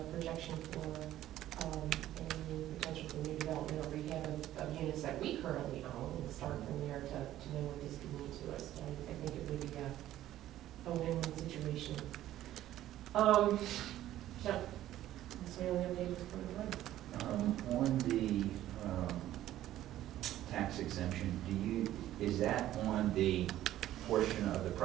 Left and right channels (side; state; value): left; quieter; 13.4 dB